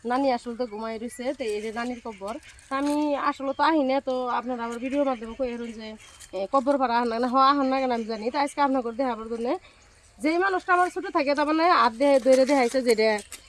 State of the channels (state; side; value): identical; both; correlation 1.00